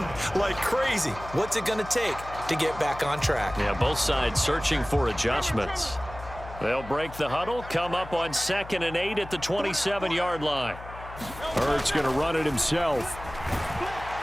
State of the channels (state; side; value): noise; left; hum, 14 dB below the sound